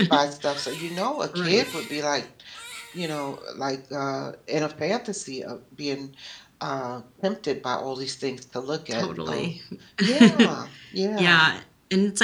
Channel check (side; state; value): both; identical; correlation 1.00